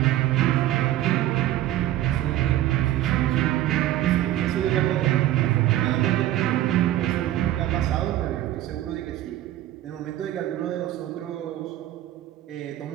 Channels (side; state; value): left; quieter; 13.8 dB